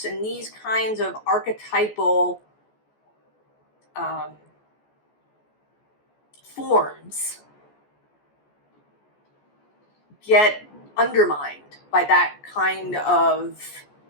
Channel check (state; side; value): late; right; 14 ms